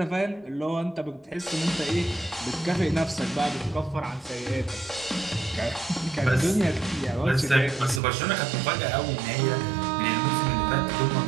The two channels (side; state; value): left; drops out; at 8.0 s